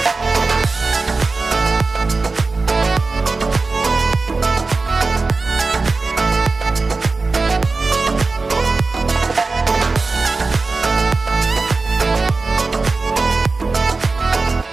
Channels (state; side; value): quieter; left; 3.8 dB